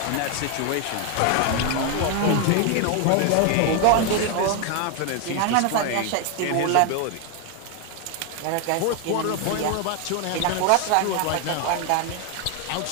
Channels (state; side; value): different; both; correlation 0.01